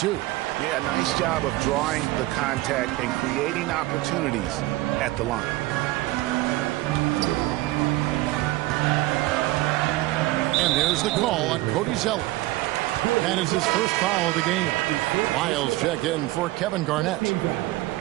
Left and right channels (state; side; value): quieter; left; 18.5 dB